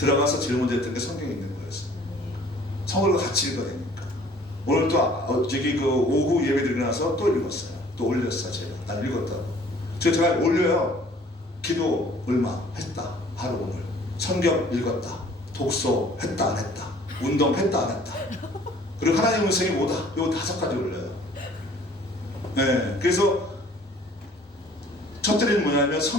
제일 먼저 했던 게 성경에 있는 거였어요. 성경을 같이 읽어야 되니까. 오늘 또 저기 그 오후 예배 드리고 나서 또 읽었어요. 또 올렸어요. 제가. 난 읽었다고. 제가 올려요. 기도 얼마 했다. 하루 오늘. 성경 읽었다. 독서 했다 안 했다. 운동 했다 안 했다. 그리고 하나님의 음성이 뭐다. 요 5가지 올려요. 네, 그래서 첫째는 뭐냐면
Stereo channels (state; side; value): normal; both; correlation 0.54